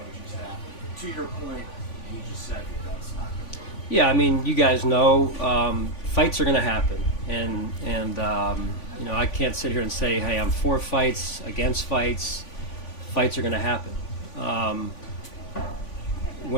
staff? To your point, you just said that's not going to work. Yeah, I mean, you guys know fights are going to happen, and you know, I can't sit here and say, hey, I'm for fights, against fights. Fights are going to happen.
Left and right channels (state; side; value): late; right; 3.5 ms